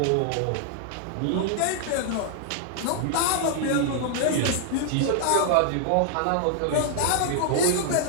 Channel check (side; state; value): both; different; correlation -0.01